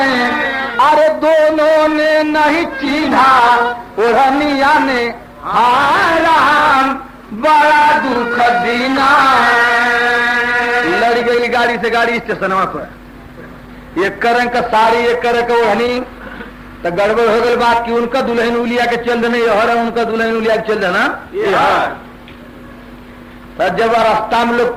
अरे दोनों ने नहीं चिन्हा ओढ़निया ने हारा बड़ा दुख दीना। लड़ गई गाड़ी से गाड़ी स्टेशनवा पर। एक रंग का साड़ी एक रंग का ओढ़नी तो गड़बड़ हो गई बात कि उनका दुल्हन उलिया के चल देना यह उनका दुल्हन उलिया के चल देना। तो जब रास्ता में लोग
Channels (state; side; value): identical; both; correlation 1.00